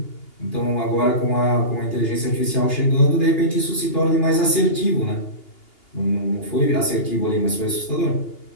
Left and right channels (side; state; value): right; late; 2.8 ms